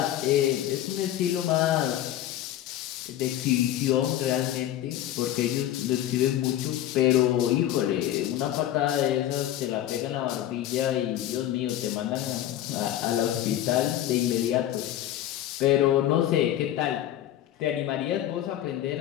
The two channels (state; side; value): quieter; right; 12.5 dB